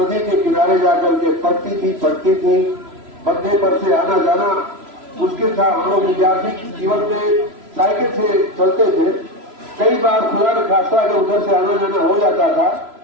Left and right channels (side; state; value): left; late; 3.0 ms